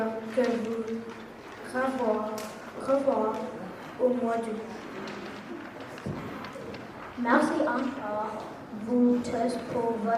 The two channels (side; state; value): both; identical; correlation 1.00